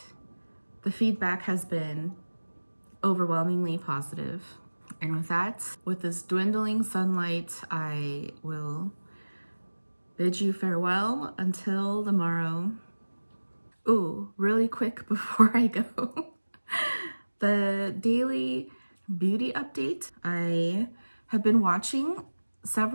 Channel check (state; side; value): inverted; both; correlation -1.00